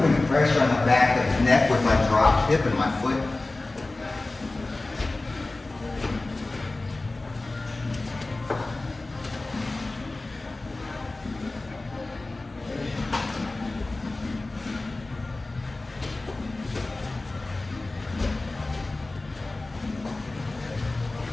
pressure on the back of his neck with my dropped hip and my foot.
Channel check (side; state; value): right; quieter; 3.1 dB